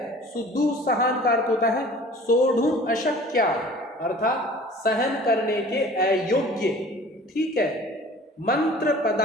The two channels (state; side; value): normal; both; correlation 0.46